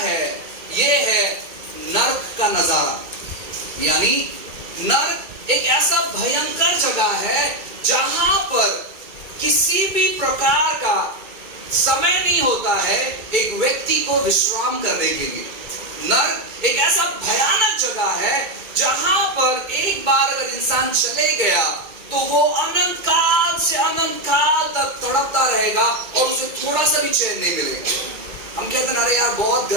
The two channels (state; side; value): late; left; 2.3 ms